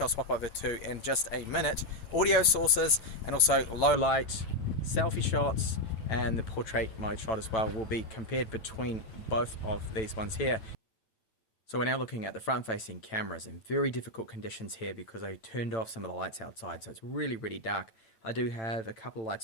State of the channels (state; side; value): late; right; 9.0 ms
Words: swap over to in just a minute, audio sources, and also low light, selfie shots, and the portrait mode shot as well will be compared between both of these ones here. So we're now looking at the front-facing cameras in very difficult conditions here because I turned off some of the lights outside, so it's really dark. I do have a couple of